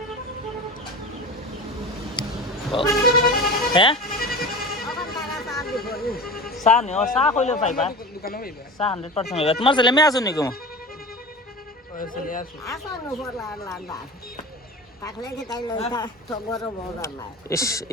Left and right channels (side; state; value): both; normal; correlation 0.32